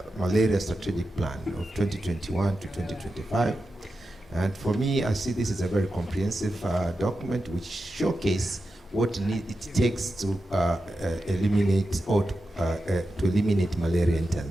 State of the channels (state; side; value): normal; both; correlation 0.90